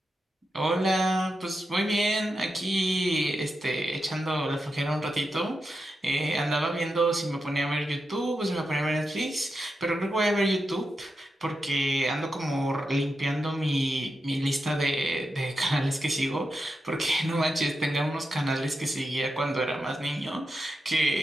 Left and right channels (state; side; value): normal; both; correlation 0.87